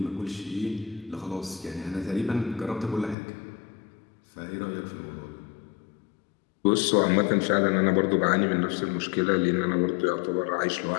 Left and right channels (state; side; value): drops out; right; at 3.2 s